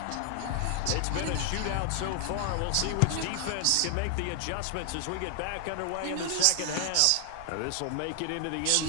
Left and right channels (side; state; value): both; different; correlation 0.00